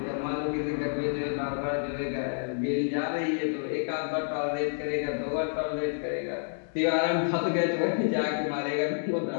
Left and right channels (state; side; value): silent; right; digital silence